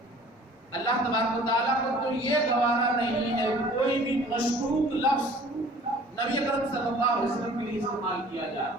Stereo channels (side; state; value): both; normal; correlation 0.50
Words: اللہ تبارک و تعالیٰ کو تو یہ گوارا نہیں ہے کہ کوئی بھی مشکوک لفظ نبی اکرم صلی اللہ علیہ وسلم کے لیے استعمال کیا جائے.